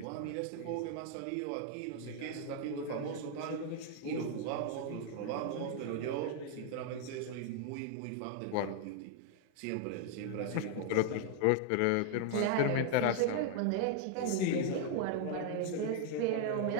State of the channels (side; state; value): both; different; correlation 0.00